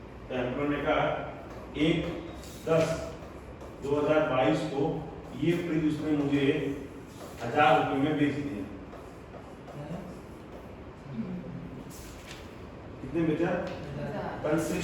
तो एम्प्लॉयर ने कहा 1/10/2022 को ये फ्रिज उसने मुझे 1,000 रुपये में बेच दिया। कितने बेचा?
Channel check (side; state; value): both; identical; correlation 1.00